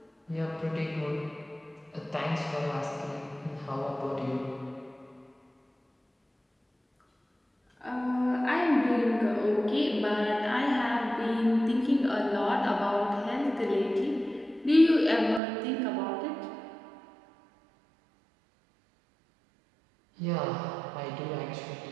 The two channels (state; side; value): drops out; left; at 15.4 s